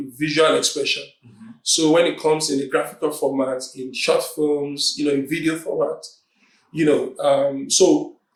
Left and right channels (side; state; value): both; identical; correlation 1.00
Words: expression. Mm-hmm. So when it comes in the graphical format, in short films, in video format, so